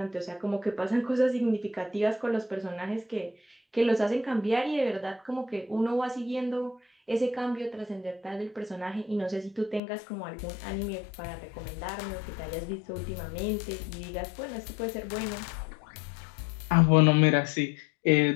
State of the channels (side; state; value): right; drops out; at 9.8 s